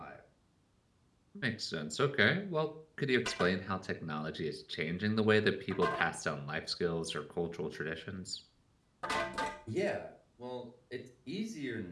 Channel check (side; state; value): both; identical; correlation 1.00